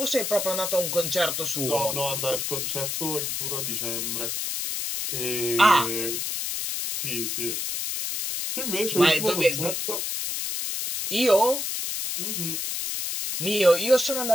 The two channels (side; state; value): left; noise; hiss, 2 dB below the sound